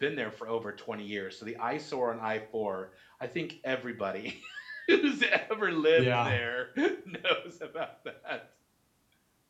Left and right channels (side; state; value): both; identical; correlation 1.00